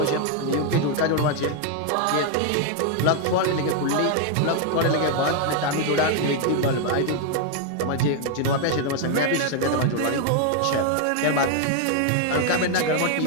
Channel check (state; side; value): different; both; correlation 0.00